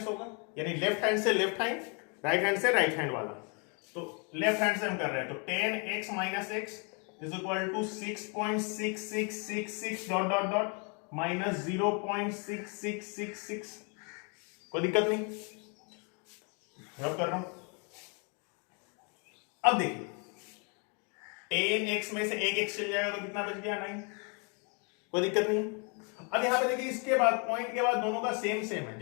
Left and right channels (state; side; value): quieter; right; 35.8 dB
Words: होगा, यानी लेफ्ट हैंड से लेफ्ट हैंड, राइट हैंड से राइट हैंड वाला। तो लेफ्ट हैंड से हम कर रहे हैं, तो 10x minus x is equal to 6.6666 dot dot dot minus 0.6666। कोई दिक्कत नहीं, रब कर रहा हूं। अब देखिए 10x में से एक x चल जाएगा तो कितना बच गया, 9। कोई दिक्कत नहीं। अब यहां पे देखिए इसके बाद पॉइंट के बाद दोनों का सेम सेम है,